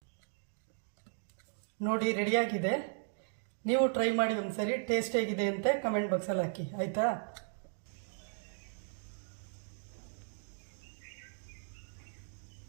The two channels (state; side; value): silent; left; digital silence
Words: ನೋಡಿ ರೆಡಿಯಾಗಿದೆ. ನೀವು ಟ್ರೈ ಮಾಡಿ ಒಂದ್ಸರಿ, ಟೇಸ್ಟ್ ಹೇಗಿದೆ ಅಂತ ಕಮೆಂಟ್ ಬಾಕ್ಸಲ್ಲಿ ಹಾಕಿ, ಆಯಿತಾ?